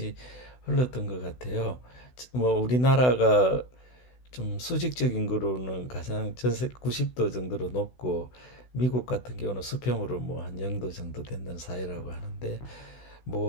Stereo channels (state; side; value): late; right; 16 ms